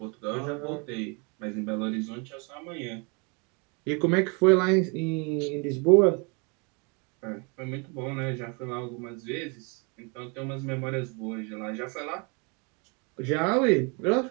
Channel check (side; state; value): left; quieter; 32.7 dB